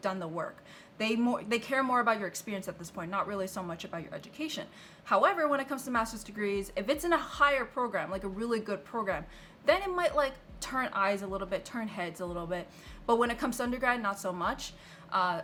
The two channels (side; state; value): both; identical; correlation 1.00